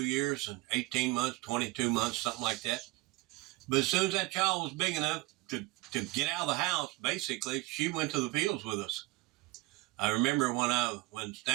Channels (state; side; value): quieter; left; 21.0 dB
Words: years, and 18 months, 22 months, something like that. But as soon as that child was big enough to get out of the house, basically, she went to the fields with us. I remember when